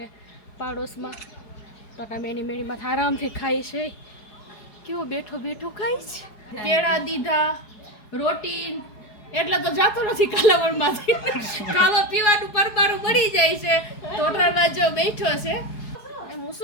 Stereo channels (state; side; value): late; right; 4.8 ms